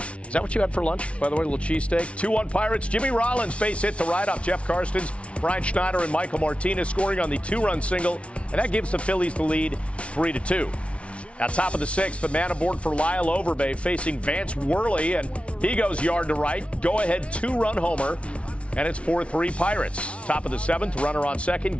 Is that what you had for lunch, by the way, a little cheesesteak? 2-1 Pirates. Jimmy Rollins base hit to right off Jeff Karstens. Brian Schneider and Michael Martinez scoring on the 2-run single, and that gives the Phillies the lead 3-2. At top of the 6th, the man aboard for Lyle Overbay facing Vance Worley, and he goes yard to right. Go-ahead 2-run homer, and it's 4-3 Pirates. Top of the 7th, runner on second,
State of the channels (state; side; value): late; right; 0.061 ms